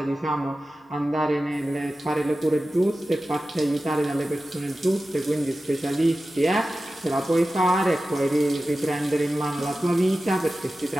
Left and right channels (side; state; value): both; normal; correlation 0.94